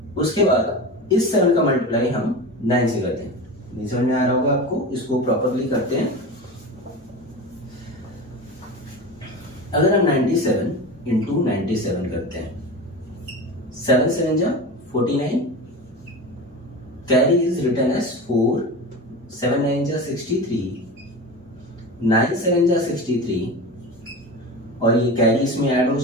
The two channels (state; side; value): normal; both; correlation 0.28